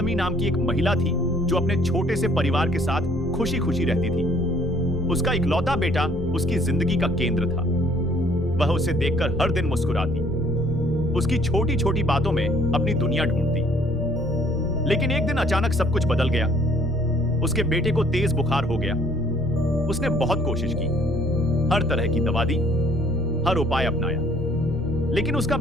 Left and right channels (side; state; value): both; normal; correlation 0.60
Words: नाम की एक महिला थी जो अपने छोटे से परिवार के साथ खुशी खुशी रहती थी। उसका इकलौता बेटा उसकी जिंदगी का केंद्र था। वह उसे देखकर हर दिन मुस्कुराती, उसकी छोटी छोटी बातों में अपनी दुनिया ढूंढती। लेकिन एक दिन अचानक सब कुछ बदल गया। उसके बेटे को तेज बुखार हो गया। उसने बहुत कोशिश की, हर तरह की दवा दी, हर उपाय अपनाया, लेकिन उसका